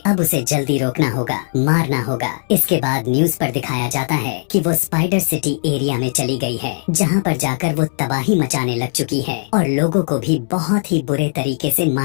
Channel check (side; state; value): right; silent; 67 dB below the other